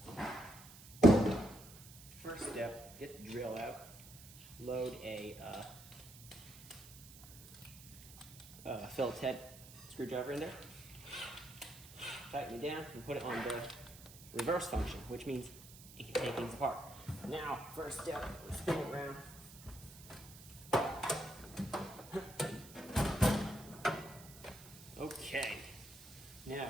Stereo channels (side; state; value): right; noise; hiss, 17 dB below the sound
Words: First step, get the drill out, load a Phillips head screwdriver in there, tighten it down, and put it on the reverse function, which means it can take things apart. Now, first step, spin it around. Okay,